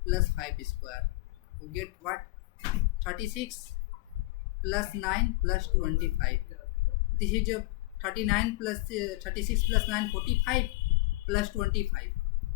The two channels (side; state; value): right; quieter; 21.5 dB